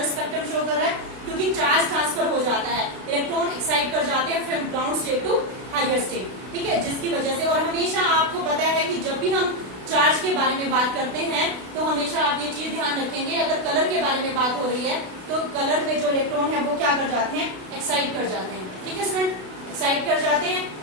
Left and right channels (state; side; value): late; left; 32 ms